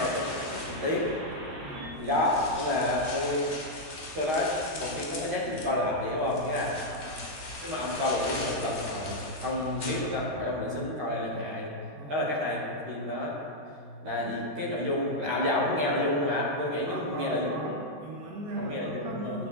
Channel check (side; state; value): left; late; 13 ms